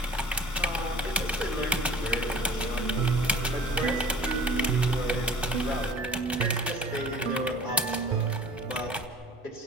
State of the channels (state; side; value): normal; both; correlation 0.47